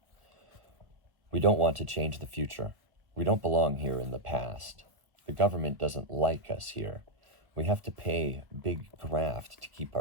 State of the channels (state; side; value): late; left; 1.3 ms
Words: "We don't want to change the future. We don't belong here in the past. The government doesn't like us here. We have to pay big graft to keep